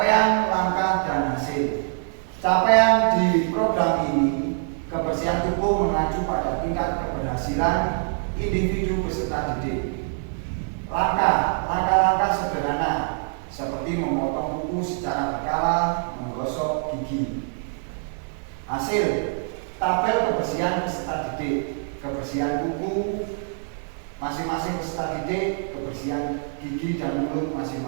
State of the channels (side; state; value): left; silent; 62 dB below the other